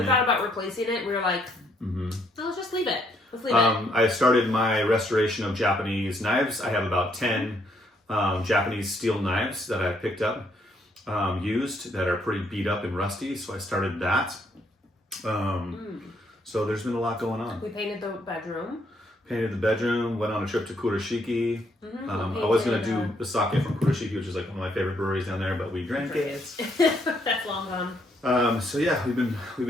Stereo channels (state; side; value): normal; both; correlation 0.71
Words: We thought about replacing it. We were like, no, let's just leave it. I started my restoration of Japanese knives. I have about 10 Japanese steel knives that I picked up, used, that are pretty beat up and rusty. So I started that. So there's been a lot going on. We painted the bedroom. Went on a trip to Kurashiki. I was going to do the sake from Kurashiki, which is like one of my favorite breweries down there, but we drank it. That's long gone. So yeah, we've